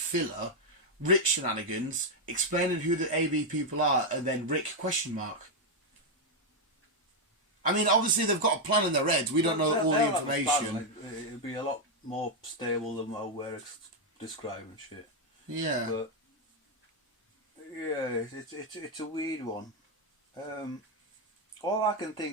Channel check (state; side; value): normal; both; correlation 0.01